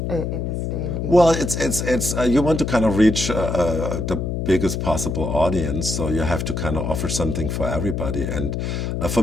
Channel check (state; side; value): noise; left; hum, 2 dB below the sound